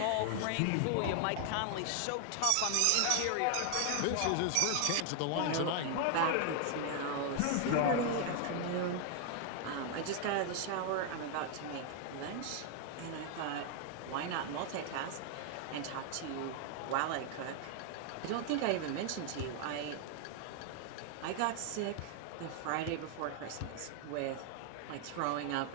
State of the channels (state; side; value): different; both; correlation 0.00